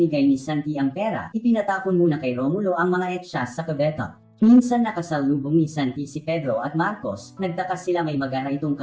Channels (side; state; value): both; identical; correlation 1.00